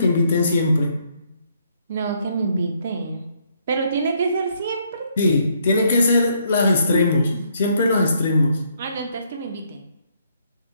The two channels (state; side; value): inverted; both; correlation -0.70